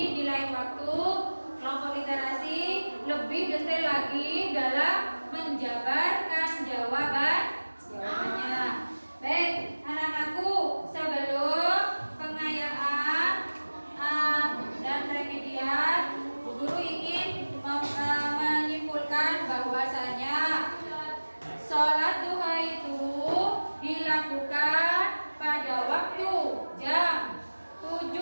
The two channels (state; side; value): inverted; both; correlation -1.00